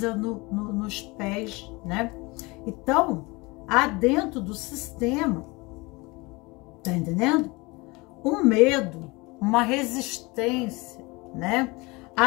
nos pés, né? Então, há dentro do sistema, tá entendendo? Um medo, uma resistência, né,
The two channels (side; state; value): right; quieter; 24.8 dB